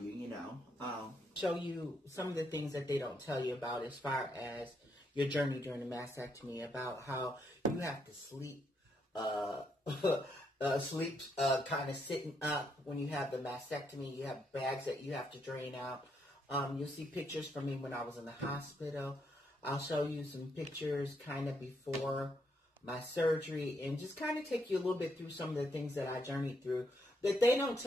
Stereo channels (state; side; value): normal; both; correlation 0.76